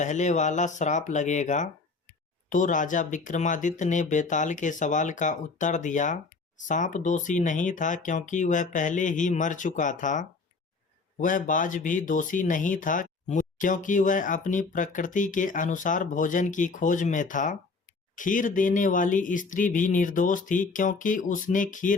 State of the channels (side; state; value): right; quieter; 4.2 dB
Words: वाला श्राप लगेगा। तो राजा विक्रमादित्य ने बेताल के सवाल का उत्तर दिया, सांप दोषी नहीं था, क्योंकि वह पहले ही मर चुका था। वह बाज भी दोषी नहीं था, क्योंकि वह अपनी प्रकृति के अनुसार भोजन की खोज में था। खीर देने वाली स्त्री भी निर्दोष थी, क्योंकि उसने